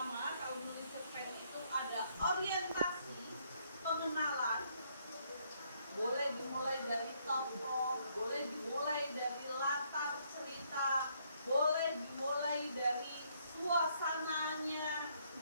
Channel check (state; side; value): inverted; both; correlation -0.71